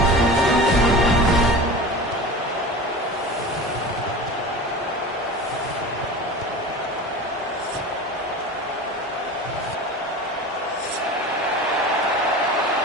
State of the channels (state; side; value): normal; both; correlation 0.33